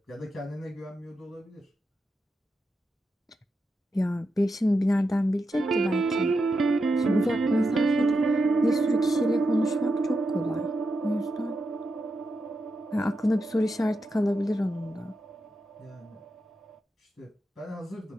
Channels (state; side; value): normal; both; correlation 0.87